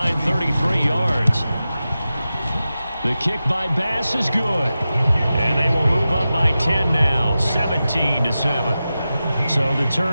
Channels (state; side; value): inverted; both; correlation -0.93